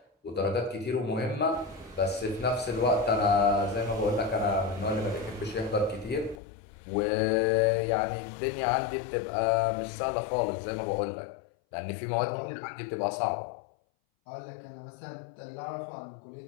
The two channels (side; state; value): right; drops out; at 6.4 s